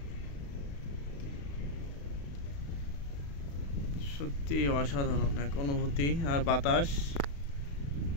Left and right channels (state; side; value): late; right; 35 ms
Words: সত্যি অসাধারণ এক অনুভূতি। আর বাতাস,